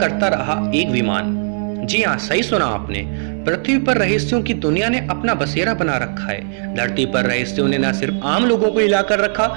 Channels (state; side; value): silent; left; digital silence